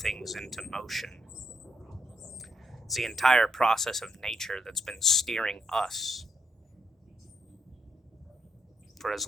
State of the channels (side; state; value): both; normal; correlation 0.78